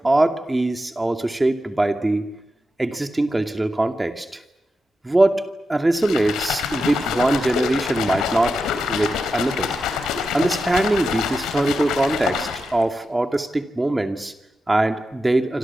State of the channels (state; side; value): normal; both; correlation 0.89